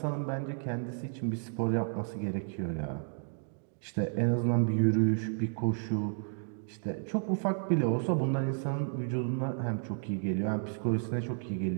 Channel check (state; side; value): silent; left; 56 dB below the other